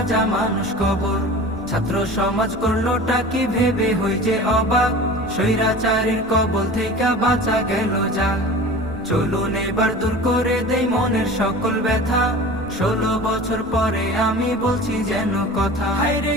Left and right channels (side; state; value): right; noise; rumble, 18 dB below the sound